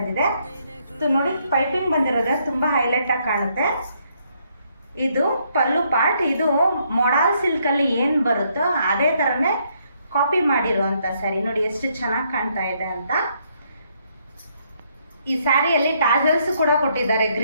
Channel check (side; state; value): both; inverted; correlation -0.72